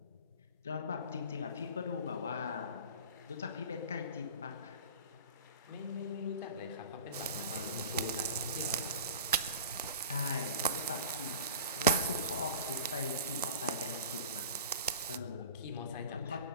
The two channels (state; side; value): inverted; both; correlation -0.37